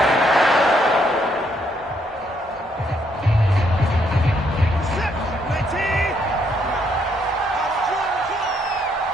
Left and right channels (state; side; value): normal; both; correlation 0.72